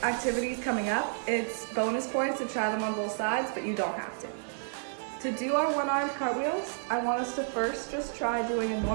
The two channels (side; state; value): left; silent; digital silence